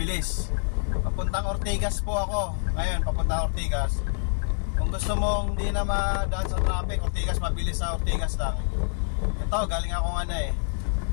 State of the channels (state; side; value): silent; right; digital silence